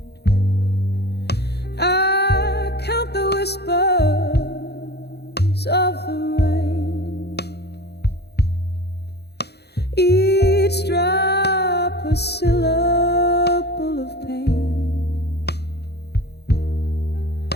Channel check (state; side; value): late; right; 0.48 ms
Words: I count the whispers of the rain, each drop a syllable of pain.